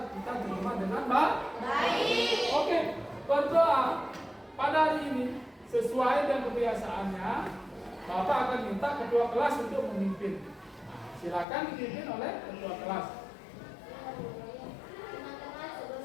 kita terima dengan Baik. Oke, berdoa pada hari ini sesuai dengan kebiasaannya. Bapak akan minta ketua kelas untuk memimpin. Silakan dipimpin oleh ketua kelas.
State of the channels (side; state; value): right; drops out; at 11.5 s